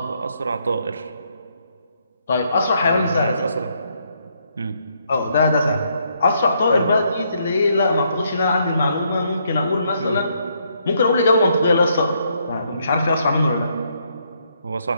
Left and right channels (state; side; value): inverted; both; correlation -0.73